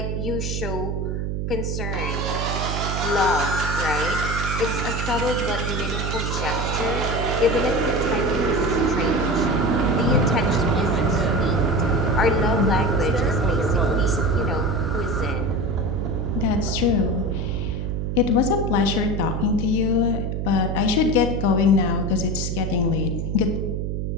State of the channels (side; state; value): right; noise; hum, 2 dB below the sound